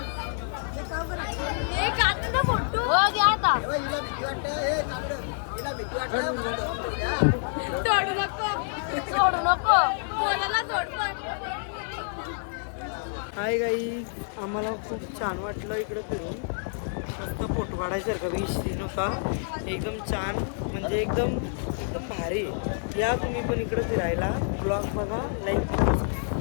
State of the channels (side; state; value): right; silent; digital silence